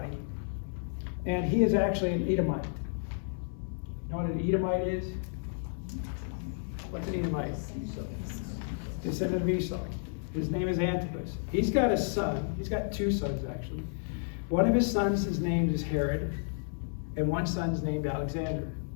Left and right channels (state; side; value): silent; right; 57 dB below the other